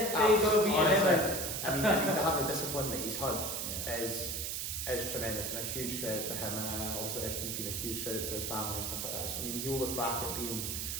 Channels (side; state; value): right; noise; hiss, 3 dB below the sound